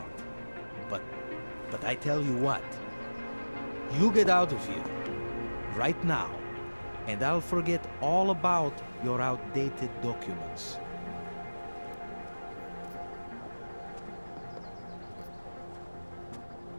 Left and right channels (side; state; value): both; inverted; correlation -1.00